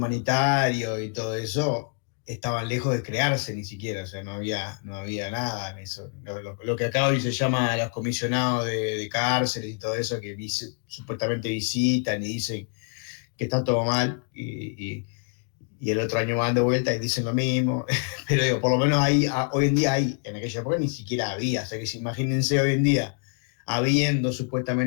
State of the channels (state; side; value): quieter; right; 39.3 dB